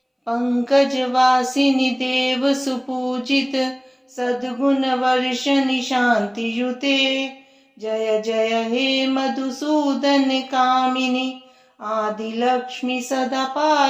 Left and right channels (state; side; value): identical; both; correlation 1.00